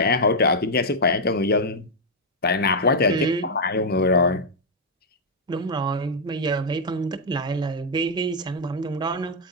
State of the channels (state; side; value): normal; both; correlation -0.04